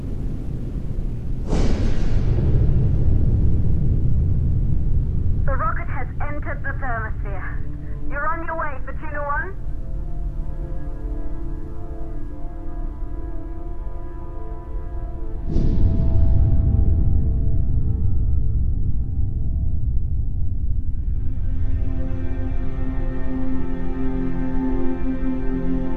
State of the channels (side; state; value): both; identical; correlation 1.00